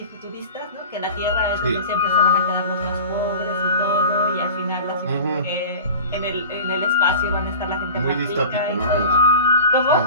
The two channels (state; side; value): inverted; both; correlation -0.36